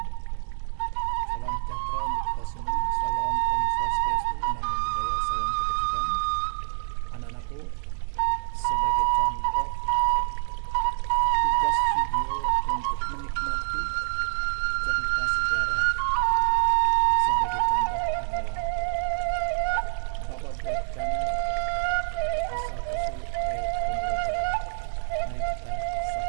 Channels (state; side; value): silent; left; digital silence